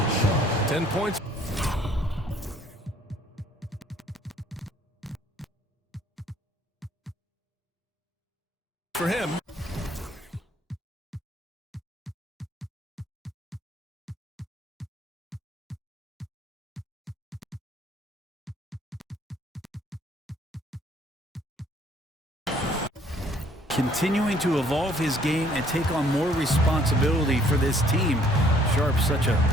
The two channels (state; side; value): normal; both; correlation 0.61